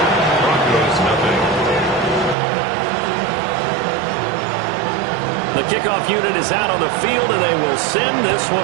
Broncos nothing. The kickoff unit is out on the field, and they will send this one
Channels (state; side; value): drops out; left; at 2.4 s